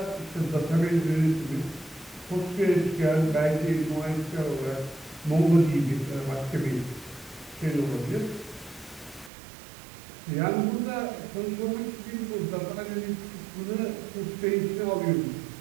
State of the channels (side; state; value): left; drops out; at 9.3 s